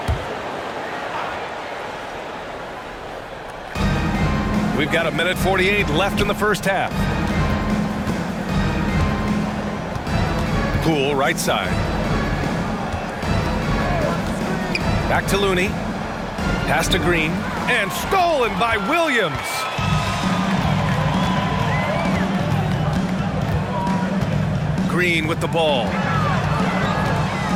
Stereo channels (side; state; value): both; identical; correlation 1.00